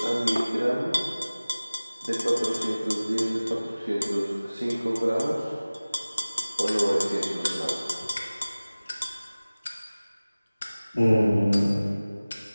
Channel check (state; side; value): inverted; both; correlation -0.99